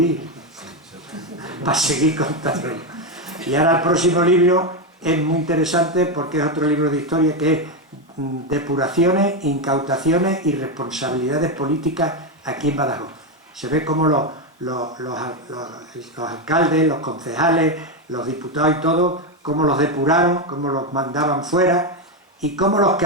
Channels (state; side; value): normal; both; correlation 0.08